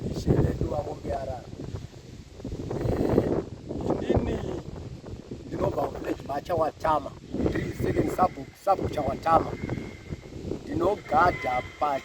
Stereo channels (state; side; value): identical; both; correlation 1.00